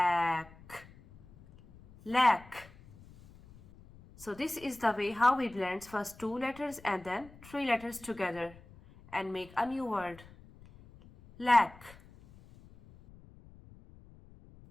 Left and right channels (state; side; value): noise; left; rumble, 22 dB below the sound